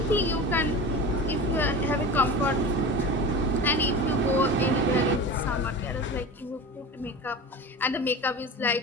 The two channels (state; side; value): normal; both; correlation 0.31